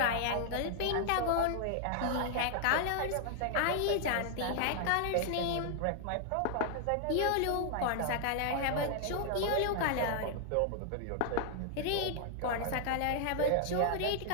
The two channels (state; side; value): different; both; correlation 0.00